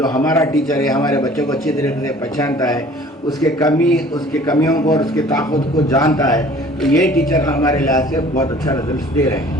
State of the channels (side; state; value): both; normal; correlation 0.50